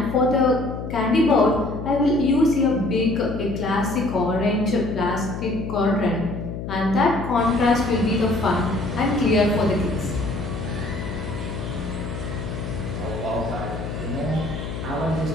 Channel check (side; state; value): left; noise; hum, 7 dB below the sound